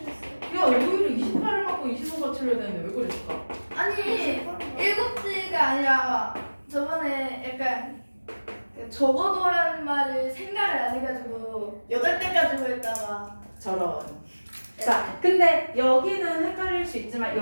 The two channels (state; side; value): inverted; both; correlation -1.00